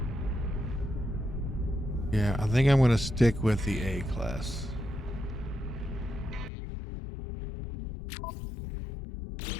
Yeah, I think I'm going to stick with the A class.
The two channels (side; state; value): right; drops out; at 6.5 s